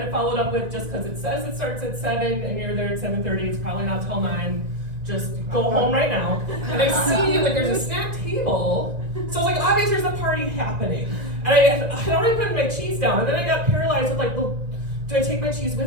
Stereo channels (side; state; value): left; late; 1.9 ms